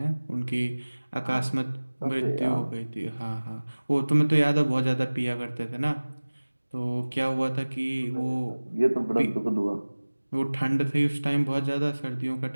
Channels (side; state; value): both; inverted; correlation -1.00